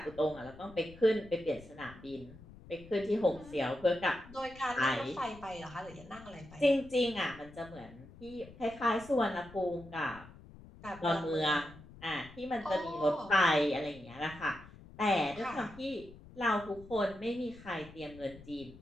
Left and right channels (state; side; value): noise; left; rumble, 19 dB below the sound